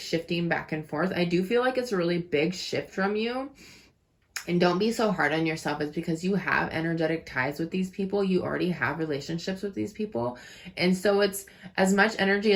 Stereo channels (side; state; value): both; identical; correlation 1.00